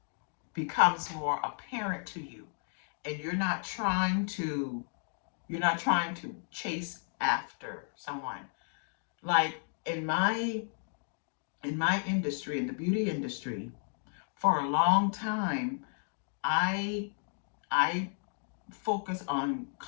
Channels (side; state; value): right; silent; 55 dB below the other